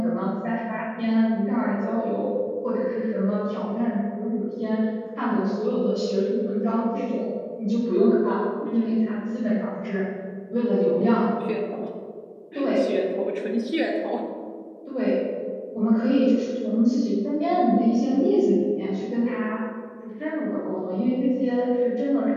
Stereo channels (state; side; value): identical; both; correlation 1.00